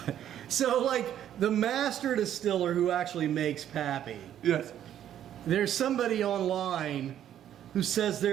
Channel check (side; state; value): left; quieter; 10.7 dB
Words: So, like, the master distiller who actually makes Pappy, Yes. there's somebody online who says